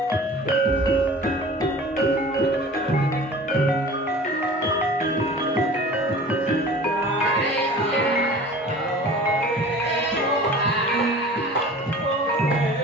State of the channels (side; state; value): both; normal; correlation 0.42